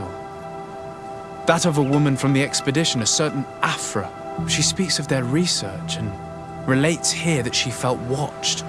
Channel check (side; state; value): both; identical; correlation 1.00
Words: That of a woman from the expedition, a certain Afra. She speaks of their research and relates here that she felt watched.